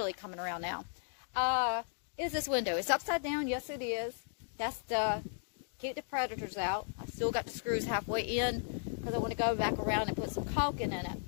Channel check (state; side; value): silent; right; digital silence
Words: coming around now. Is this window. It's upside down. Yes, it is. That's to keep the predators out. I still got the screws halfway in because I want to go back around and put some caulking in it.